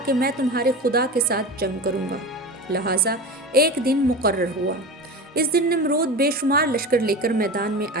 کہ میں تمہارے خدا کے ساتھ جنگ کروں گا۔ لہٰذا ایک دن مقرر ہوا۔ اس دن نمرود بے شمار لشکر لے کر میدان میں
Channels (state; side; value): normal; both; correlation 0.28